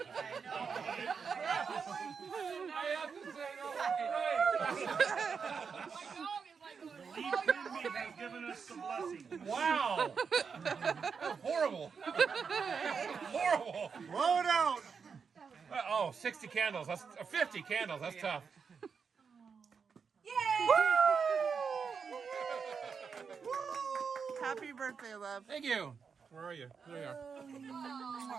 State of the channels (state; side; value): quieter; left; 5.9 dB